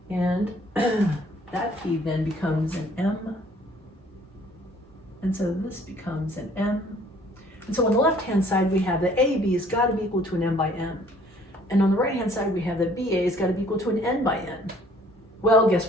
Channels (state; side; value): normal; both; correlation 0.58